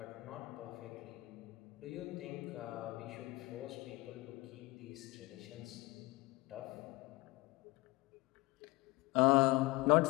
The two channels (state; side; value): quieter; right; 22.4 dB